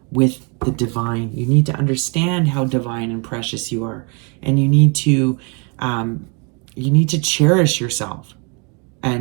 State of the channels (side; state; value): left; quieter; 34.1 dB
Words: with the divine. You need to understand how divine and precious you are. And you need to cherish yourself